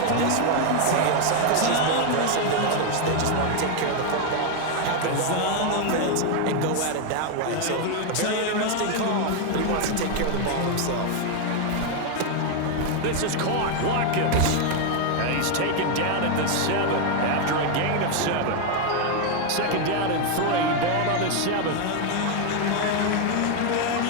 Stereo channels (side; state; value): both; different; correlation 0.01